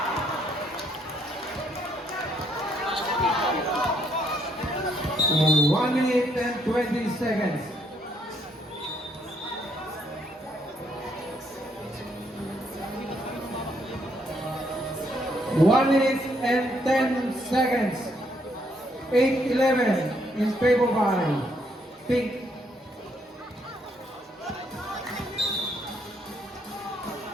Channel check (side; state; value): both; normal; correlation 0.71